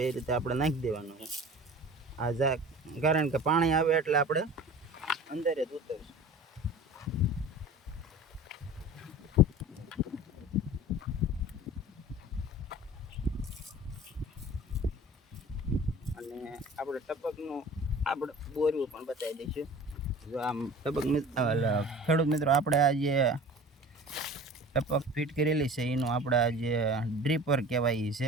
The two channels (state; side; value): normal; both; correlation 0.41